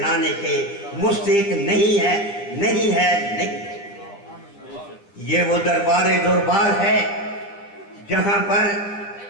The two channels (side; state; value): right; late; 10 ms